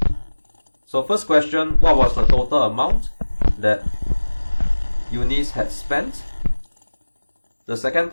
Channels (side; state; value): both; inverted; correlation -1.00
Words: So first question, what was the total amount that Eunice had spent? The second